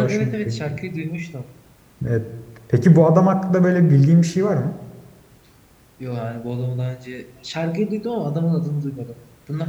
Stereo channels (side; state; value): both; identical; correlation 1.00